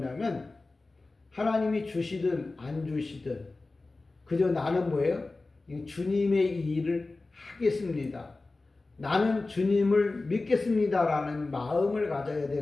하나님이 주시든 안 주시든 그저 나는 뭐예요? 주님의 일을 하겠습니다. 나는 주님을 믿겠습니다라는 마음을 가져야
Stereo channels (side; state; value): right; quieter; 3.4 dB